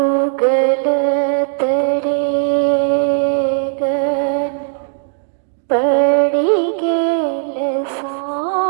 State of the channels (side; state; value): left; silent; digital silence